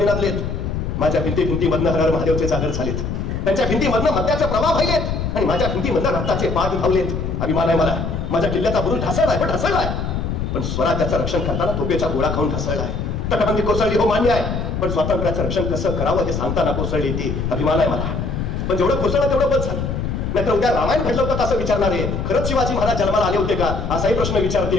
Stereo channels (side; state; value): left; noise; rumble, 3 dB below the sound